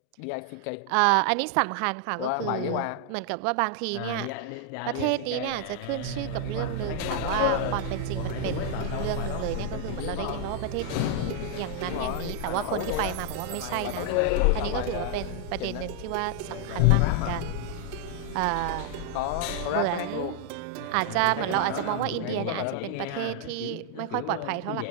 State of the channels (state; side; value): different; both; correlation 0.00